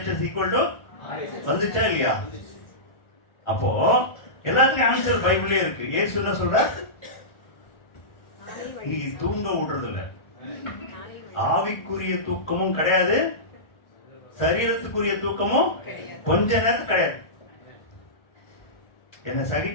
ஈக்குவல் டு வந்துச்சா இல்லையா? அப்போ எல்லாத்துக்கும் ஆன்சர் பைபிளே இருக்கு. இயேசு என்ன சொல்ற? நீ தூங்க விடுறது இல்ல. ஆவிக்குரிய தூக்கமும் கிடையாது, சரீரத்துக்குரிய தூக்கமும் கொஞ்ச நேரத்துக்கு கிடையாது. என்ன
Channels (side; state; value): right; late; 1.4 ms